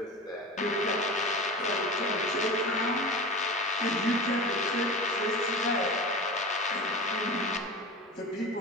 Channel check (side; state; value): both; normal; correlation 0.30